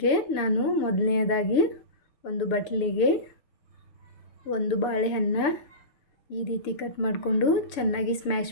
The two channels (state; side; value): late; right; 6.8 ms